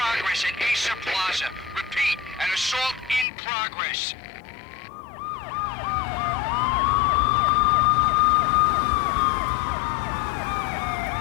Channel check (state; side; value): drops out; right; at 3.2 s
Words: at Acer Plaza. Repeat, an assault in progress.